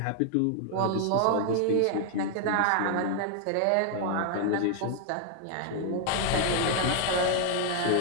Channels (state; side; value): different; both; correlation 0.00